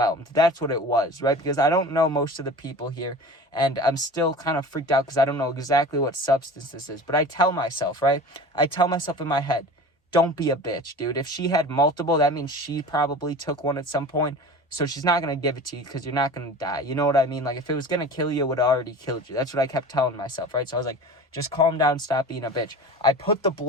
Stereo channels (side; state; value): both; normal; correlation 0.37